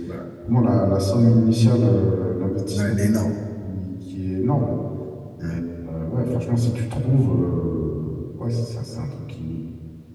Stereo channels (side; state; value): both; identical; correlation 1.00